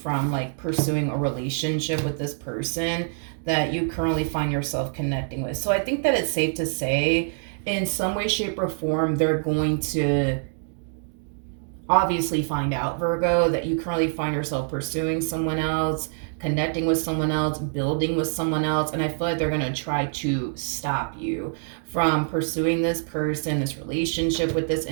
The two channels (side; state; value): left; silent; digital silence